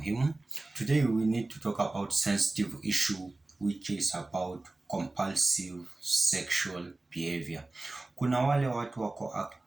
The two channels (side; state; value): left; quieter; 3.0 dB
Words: Today we need to talk about sensitive issue which is about compulsive sexual behavior. Kuna wale watu wako